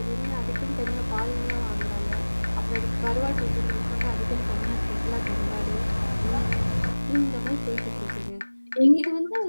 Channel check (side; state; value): both; inverted; correlation -1.00